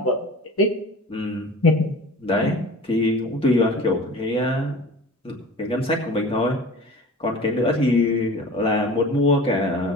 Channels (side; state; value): both; normal; correlation 0.39